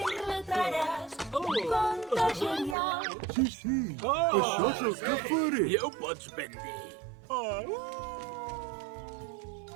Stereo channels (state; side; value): drops out; left; at 2.8 s